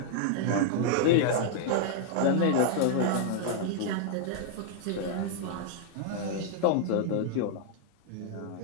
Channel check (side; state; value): both; different; correlation 0.00